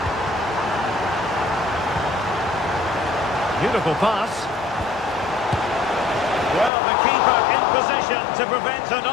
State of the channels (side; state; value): right; drops out; at 6.7 s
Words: Beautiful pass. Well, the keeper in position to prevent